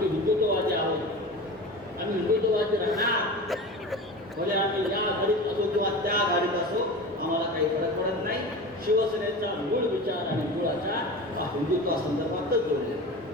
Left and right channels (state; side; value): normal; both; correlation 0.31